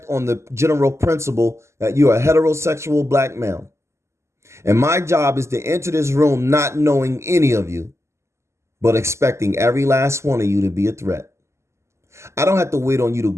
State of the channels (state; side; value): late; left; 0.13 ms